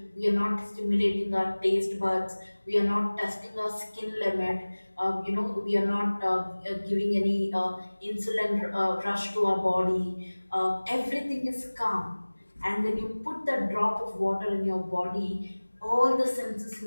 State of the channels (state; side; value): inverted; both; correlation -1.00